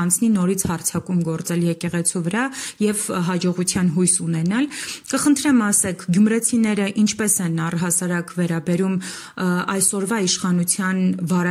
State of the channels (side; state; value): both; identical; correlation 1.00